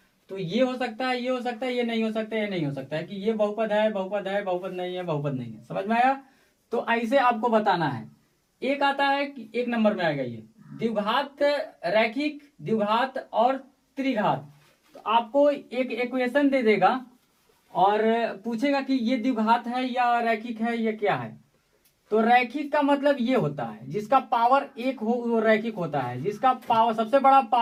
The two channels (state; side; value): identical; both; correlation 1.00